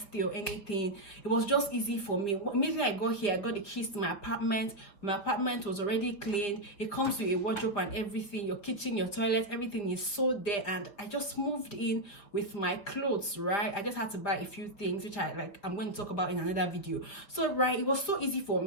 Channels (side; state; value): right; late; 5.1 ms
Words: or anything. It was just easy for me. Immediately I got here, I got the keys to my apartment. My apartment was already cleaned. It comes with a wardrobe and everything. Your kitchen, your toilet, everything is so there. And I just moved in with my clothes, right? I just had to buy a few things, which I'm going to talk about in another video. So, right, it was so easy for